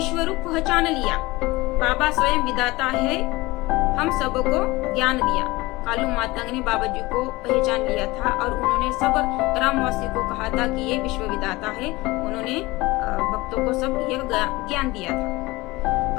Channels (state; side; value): quieter; right; 21.2 dB